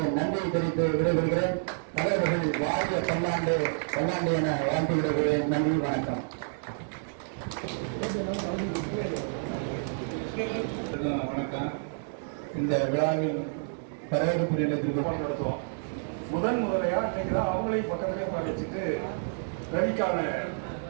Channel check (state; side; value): silent; left; digital silence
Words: நன்றியை தெரிவித்து விடைபெறுகிறேன். தலைவர்கள் வாரிய பல்லாண்டு பல்லாண்டு என வாழ்த்து விடுகிறேன். நன்றி, வணக்கம். வணக்கம். இந்த விழாவில் வரவேற்பு நிலையத்திற்கு நடத்துவோம். முதன்முறையா இன்னைக்கு தான் அவங்களையும் பக்கத்திலே வச்சுட்டு ரவிக்கான